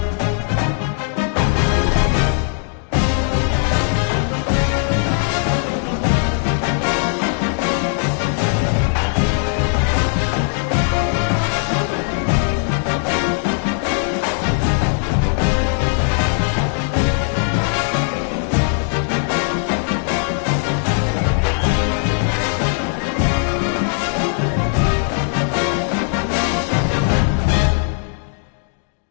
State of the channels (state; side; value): silent; right; 61 dB below the other